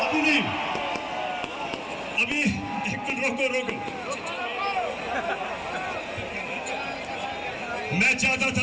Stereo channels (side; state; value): both; identical; correlation 1.00